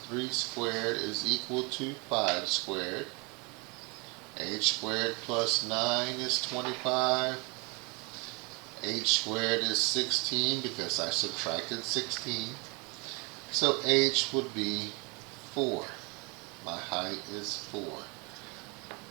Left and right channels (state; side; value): quieter; left; 30.3 dB